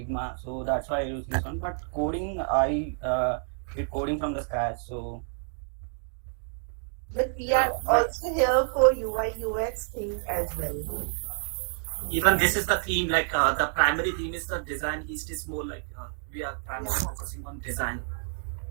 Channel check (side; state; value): left; silent; digital silence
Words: so that's why I use this one. But coding, I did coding from the scratch. So. But we are also here for UI UX thing as well. even this is the theme, like the primary theme is the design. Heist is more like we are primarily focusing on design.